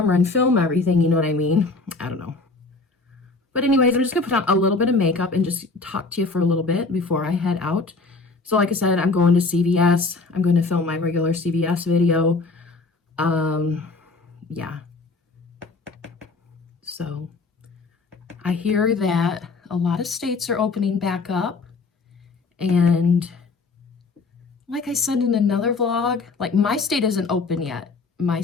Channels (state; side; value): quieter; right; 3.8 dB